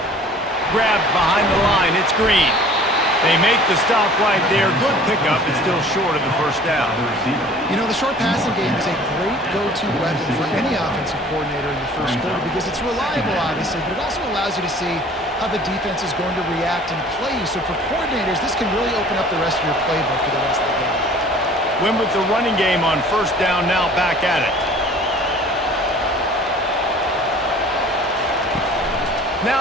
Grabbed behind the line, it's Green. They make the stop right there. Good pickup, it's still short of the first down. You know, the short passing game is a great go-to weapon for any offensive coordinator in the first quarter because it's reliable, obviously, but it also allows you to see how the defense is going to react and play. So for coordinators, this can really open up the rest of your playbook for the rest of the game. Win with the running game on first down, now back at it.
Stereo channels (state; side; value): normal; both; correlation 0.48